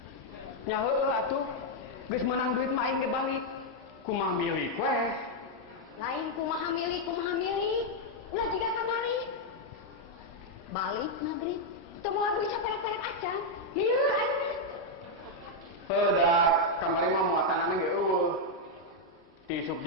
Nya heueuh atuh. Geus menang duit mah aing ge balik. Kumaha milik weh. Lain kumaha milik. Ulah jiga kamari. Balik maghrib. Teu moal duit saperek-perek acan. Lieur ayeuna. Heudak kamari mah muatanana ge eueuh. Ti isuk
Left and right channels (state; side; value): normal; both; correlation -0.01